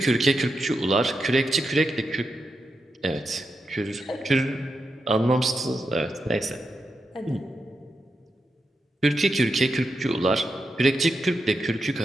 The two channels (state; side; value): normal; both; correlation 0.86